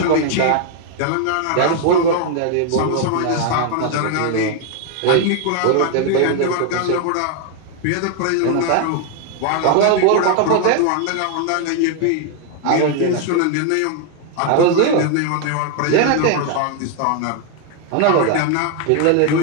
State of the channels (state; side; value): different; both; correlation 0.00